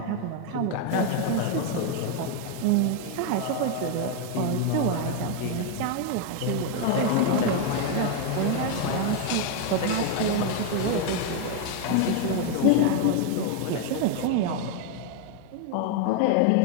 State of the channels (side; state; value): both; different; correlation 0.01